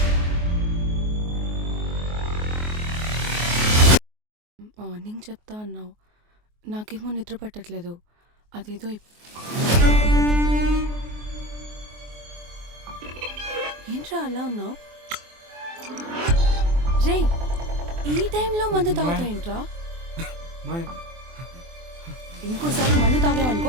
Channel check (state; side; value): late; left; 24 ms